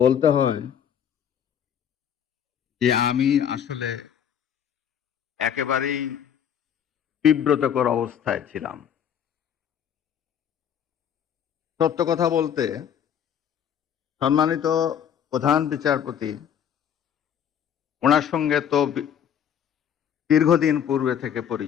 বলতে হয় যে আমি আসলে একেবারেই বিব্রতকর অবস্থায় ছিলাম। সত্য কথা বলতে, সম্মানিত প্রধান বিচারপতি, ওনার সঙ্গে তো দীর্ঘদিন পূর্বে থেকে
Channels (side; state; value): right; quieter; 8.9 dB